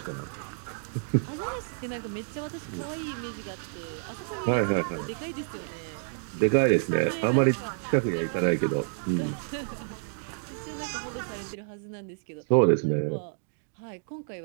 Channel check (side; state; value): left; silent; digital silence